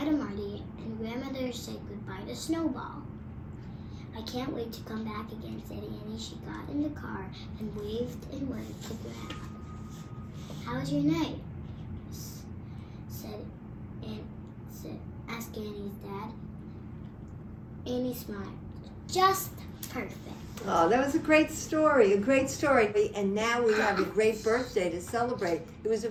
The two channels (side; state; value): both; identical; correlation 1.00